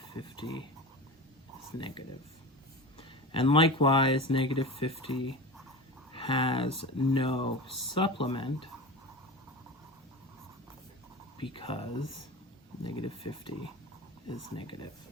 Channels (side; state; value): both; normal; correlation 0.29